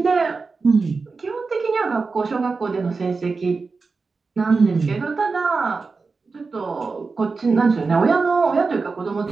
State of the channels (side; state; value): left; quieter; 4.3 dB